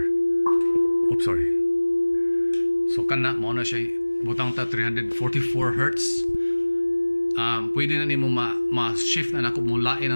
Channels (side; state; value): both; inverted; correlation -1.00